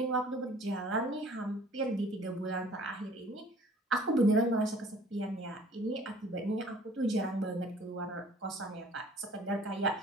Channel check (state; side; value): normal; both; correlation 0.52